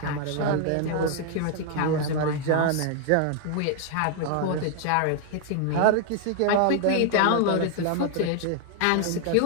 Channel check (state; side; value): different; both; correlation 0.00